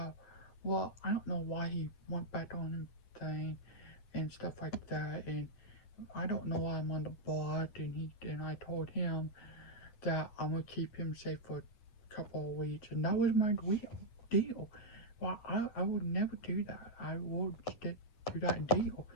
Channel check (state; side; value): late; right; 9.2 ms